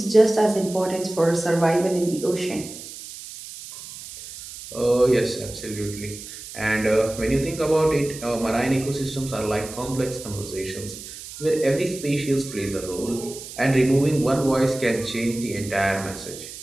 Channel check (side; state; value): right; noise; hiss, 13 dB below the sound